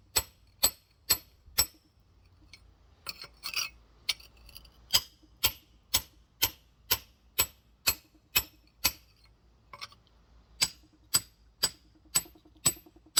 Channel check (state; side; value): identical; both; correlation 1.00